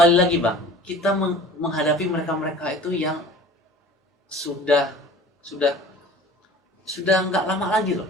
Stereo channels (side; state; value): both; normal; correlation 0.44